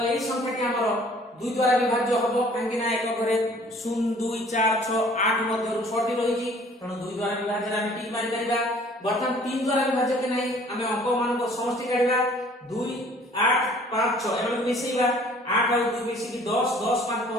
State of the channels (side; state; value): both; normal; correlation 0.54